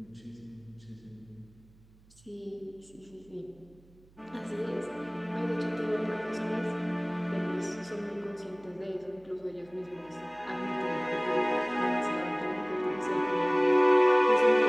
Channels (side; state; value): right; noise; hum, 28 dB below the sound